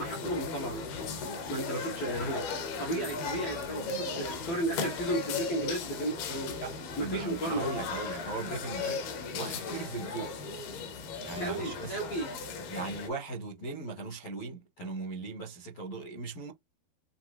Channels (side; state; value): right; late; 13 ms